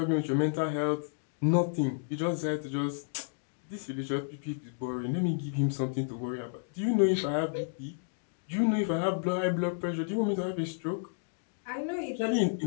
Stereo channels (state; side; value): silent; right; digital silence